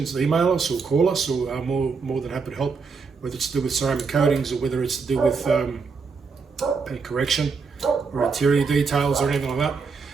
email us or call us, or more than happy to help, whether it's to do with ceramic coatings or whether it's to do with paint correction or interior details or anything like that.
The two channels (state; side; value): quieter; left; 5.0 dB